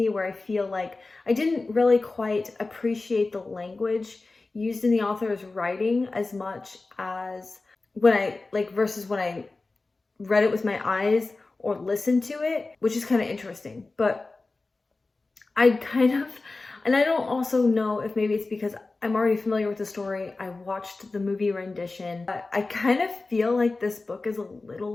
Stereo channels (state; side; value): quieter; right; 3.5 dB